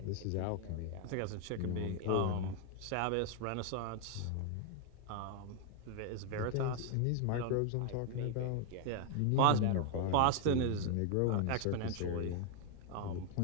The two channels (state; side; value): different; both; correlation 0.00